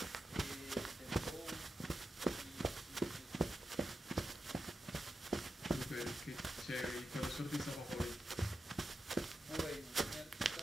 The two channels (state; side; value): normal; both; correlation 0.88